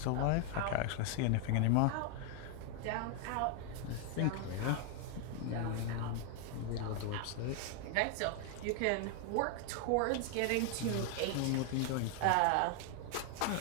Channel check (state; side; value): different; both; correlation 0.00